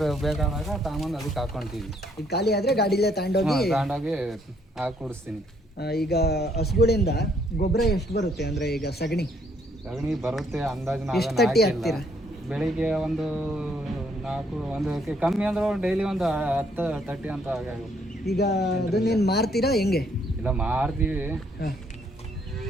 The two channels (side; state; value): both; normal; correlation 0.68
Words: ಬೇಕಾದಾಗ ತಾಮಂದು ಅದಕ್ಕೆ ಹಾಕೊಂತೀವಿ. ಈಗ ಖಾಲಿ ಆದ್ರೆ ಗಾಡಿಲೇ ತಗೊಂಡೋಗಿ ಹಾಕಿ ಕುಡಿಸ್ತೀನಿ. ಈಗ ಹಸುಗಳಿಂದ ಗೊಬ್ಬರ ಎಷ್ಟು ಬರುತ್ತೆ? ಅಂದ್ರೆ ಈಗ ಸಗಣಿ ಬರುತ್ತೆ ಅಂದಾಜು. ಎಷ್ಟು ತಟ್ಟಿ ಹಾಕ್ತೀರಾ? ಬೆಳಿಗ್ಗೆ ಒಂದು 4 ಒಂದು ಕಮ್ಮಿ ಅಂದ್ರೆ ಡೈಲಿ ಒಂದು 10-30 ಅಂತ ಆಗುತ್ತೆ. ಈಗ ಅದನ್ನೇನು ಮಾರ್ತೀರಾ ಹೆಂಗೆ? ಇಲ್ಲ ಮಾರ್ತೀವಿ. ಹಾಂ,